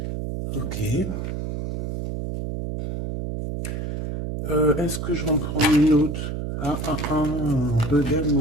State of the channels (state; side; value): noise; right; hum, 4 dB below the sound